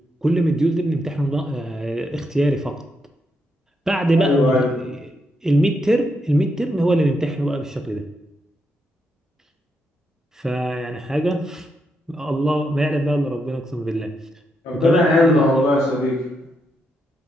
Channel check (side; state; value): both; normal; correlation 0.81